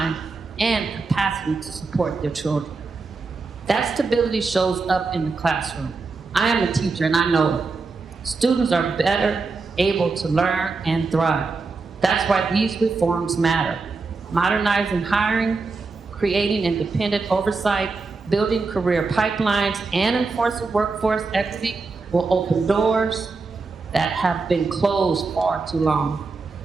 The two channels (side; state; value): left; quieter; 4.1 dB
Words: and capacity to support their children. That stability shows up in the classroom. I am a teacher and I know it. Students are better able to learn and thrive. That's why these reforms matter. Modernizing hiring, creating independent oversight, building career pipelines, and enforcing workforce equity will open doors that have been closed far too long.